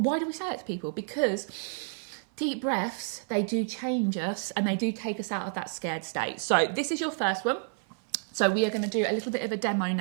do we say it to people? Because deep breaths, they do change us and they do take us out of that scared state. So this is your first one. So we are going to do a little bit of a demo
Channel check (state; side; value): silent; left; 57 dB below the other